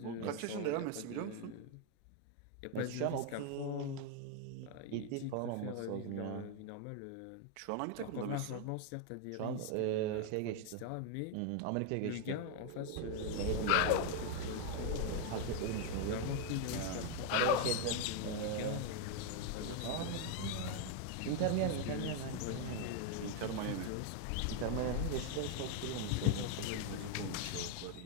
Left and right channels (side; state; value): both; different; correlation 0.00